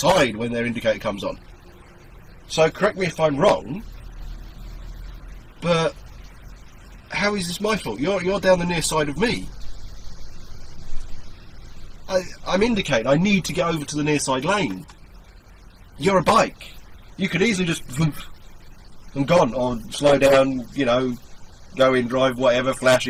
when their indicator comes on. So correct me if I'm wrong, but how is this my fault? You're down the near side of me. I'm indicating. I need to get over to the near side lane. You're a bike. You could easily just vroom and gone, or slow down, you know, go in, drive, whatever, flash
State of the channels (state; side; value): identical; both; correlation 1.00